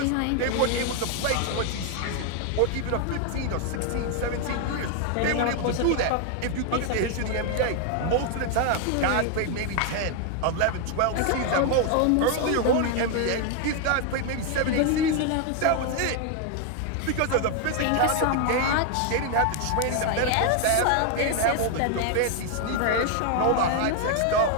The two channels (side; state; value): both; different; correlation 0.01